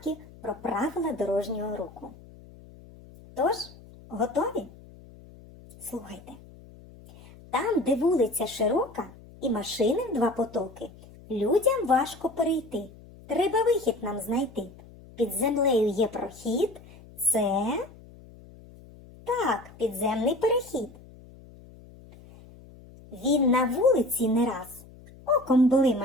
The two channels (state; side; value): noise; left; hum, 21 dB below the sound